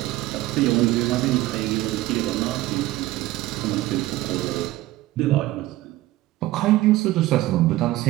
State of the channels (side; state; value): left; quieter; 16.7 dB